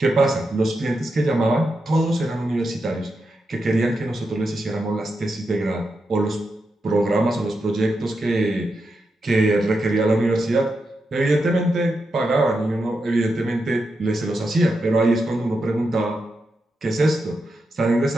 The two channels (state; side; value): normal; both; correlation 0.86